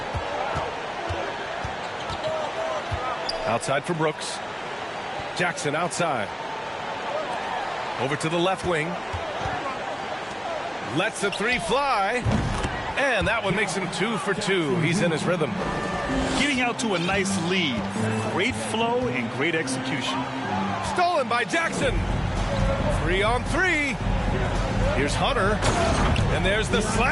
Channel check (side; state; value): both; identical; correlation 1.00